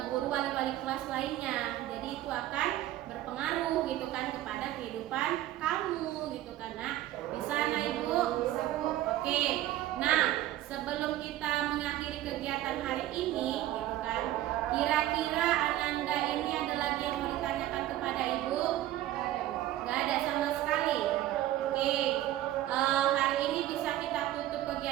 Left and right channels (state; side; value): quieter; left; 14.1 dB